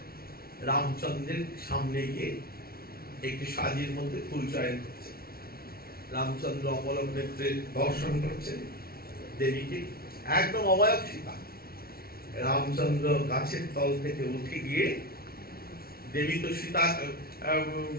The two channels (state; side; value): late; right; 0.44 ms